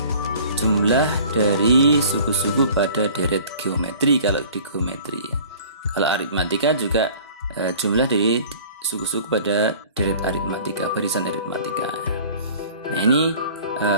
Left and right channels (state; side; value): inverted; both; correlation -0.47